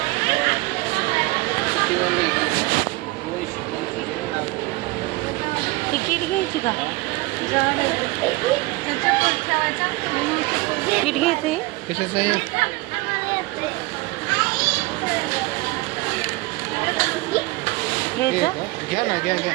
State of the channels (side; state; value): left; quieter; 22.6 dB